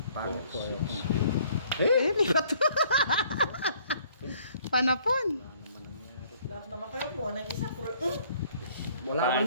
Pangit ko. Di ba to? Panapon. Lahat naman kayo mo, ng isa, Wala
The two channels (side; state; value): both; inverted; correlation -0.60